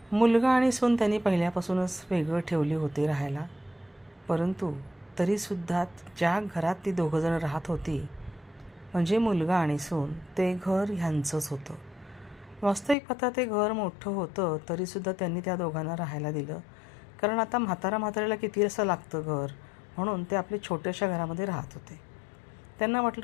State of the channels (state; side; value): drops out; right; at 13.0 s